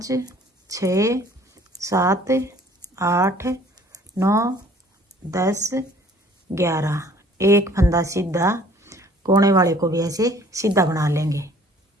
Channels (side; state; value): both; normal; correlation 0.54